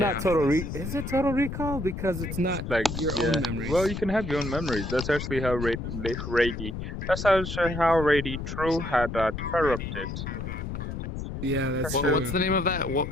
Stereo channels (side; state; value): left; noise; rumble, 6 dB below the sound